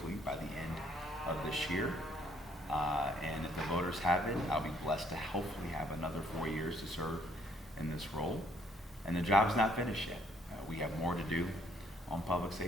by the end of this year. And if the voters have it, I'll be blessed to hopefully have another 4 years to serve in this role. And the job's not finished yet. We have more to do on public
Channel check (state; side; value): normal; both; correlation 0.66